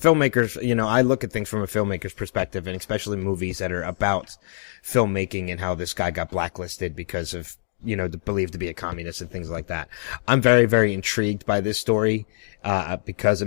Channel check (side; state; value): right; silent; digital silence